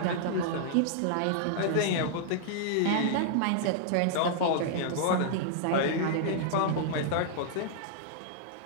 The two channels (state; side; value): different; both; correlation -0.01